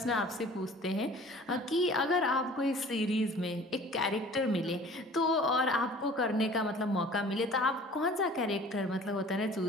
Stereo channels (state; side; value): normal; both; correlation 0.47